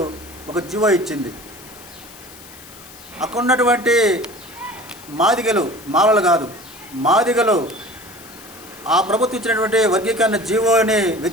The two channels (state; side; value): noise; left; hiss, 19 dB below the sound